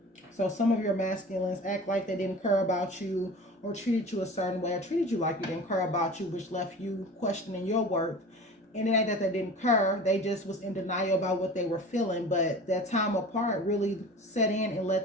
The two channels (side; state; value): both; normal; correlation 0.38